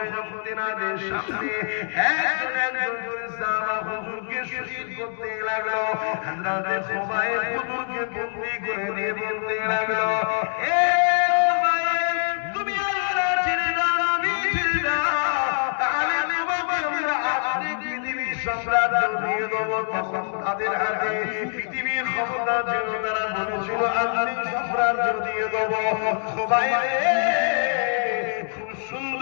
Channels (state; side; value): silent; right; digital silence